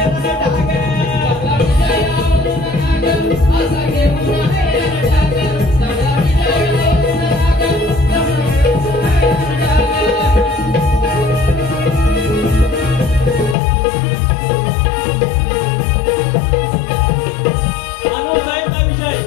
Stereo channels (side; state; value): right; drops out; at 13.6 s